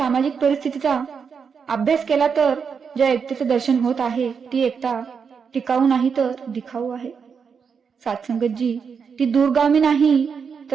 परिस्थितीचा अभ्यास केला तर ज्या एकतेचे दर्शन होत आहे ती एकता टिकाऊ नाही तर दिखाऊ आहे. सात्संगतजी, ती दूरगामी नाही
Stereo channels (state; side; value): quieter; left; 6.2 dB